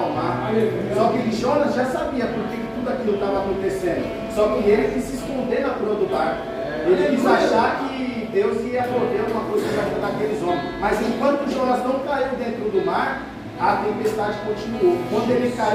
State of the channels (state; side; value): identical; both; correlation 1.00